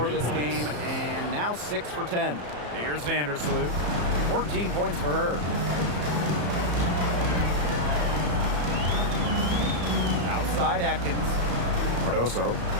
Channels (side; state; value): left; late; 34 ms